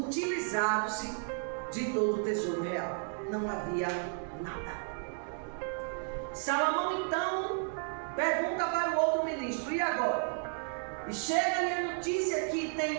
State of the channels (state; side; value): silent; left; 56 dB below the other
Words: de todo o tesouro real. Não havia nada. Salomão então pergunta para o outro ministro: e agora? E chega-lhe a notícia que